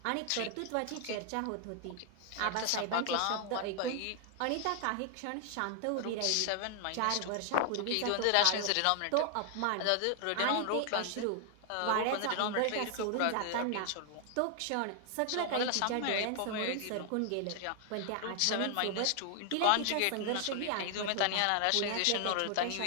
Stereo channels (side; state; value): both; different; correlation 0.00